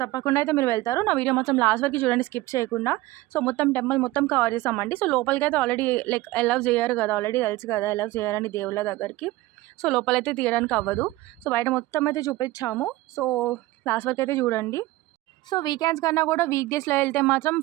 తప్పకుండా అయితే మీరు వెళ్తారు. నా వీడియో మొత్తం లాస్ట్ వరకు చూడండి, స్కిప్ చేయకుండా. మొత్తం టెంపుల్ మొత్తం కవర్ చేసామండి. లోపలికి అయితే ఆల్రెడీ లైక్ అలౌ చేయరు కదా, ఆల్రెడీ తెలుసు కదా అలౌ చేయాలని దేవుళ్ళ దగ్గరికి. లోపలైతే తీయడానికి అవ్వదు. బయట మొత్తం అయితే చూపించాము. లాస్ట్ వరకు అయితే చూడండి. వీకెండ్స్ కన్నా కూడా వీక్ డేస్లో వెళ్తే మాత్రం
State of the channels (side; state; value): left; quieter; 18.2 dB